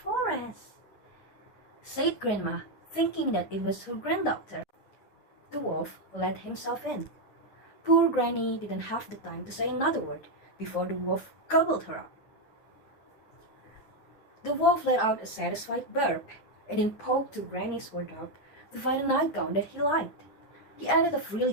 said Grandma, thinking that it was her granddaughter. The wolf let himself in. Poor Granny didn't have the time to say another word before the wolf gobbled her up. The wolf let out a satisfied burp and then poked to Granny's wardrobe to find a nightgown that he liked. He added a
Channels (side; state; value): right; late; 9.7 ms